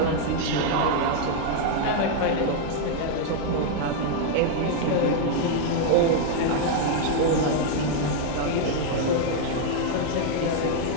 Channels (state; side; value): different; both; correlation 0.00